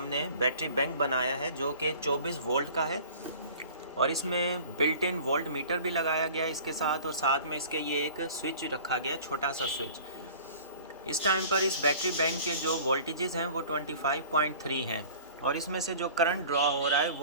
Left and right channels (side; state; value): both; inverted; correlation -0.45